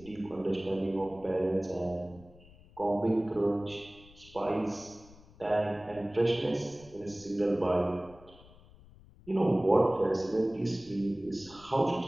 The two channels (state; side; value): noise; left; rumble, 23 dB below the sound